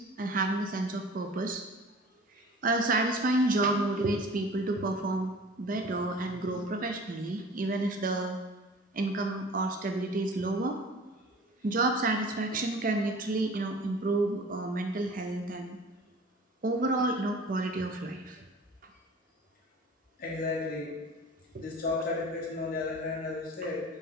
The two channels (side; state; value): both; normal; correlation 0.43